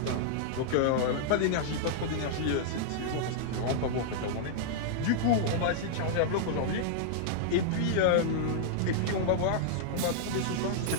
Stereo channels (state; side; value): different; both; correlation -0.01